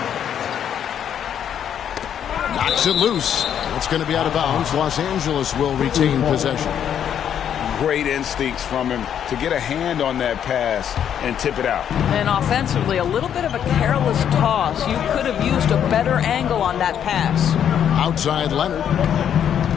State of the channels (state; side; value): quieter; right; 9.1 dB